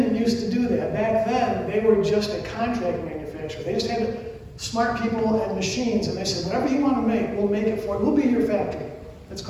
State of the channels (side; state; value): both; identical; correlation 1.00